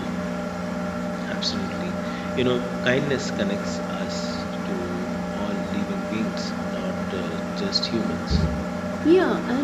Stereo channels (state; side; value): identical; both; correlation 1.00